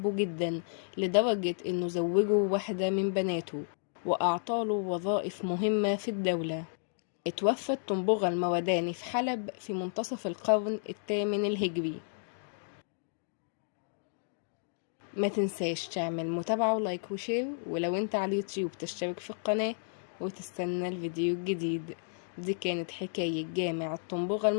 جدا، لدرجة إنه زوجه واحدة من بناته وأعطاله وظائف مهمة في الدولة. اتوفى الطنبغة المرداني في حلب في منتصف القرن الثامن الهجري. ما تنساش تعمل متابعة ولايك وشير، ولو انت على اليوتيوب تشترك في القناة وتستنى الفيديو الجديد. دي كانت حكاية جامع الطنبغة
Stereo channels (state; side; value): silent; right; digital silence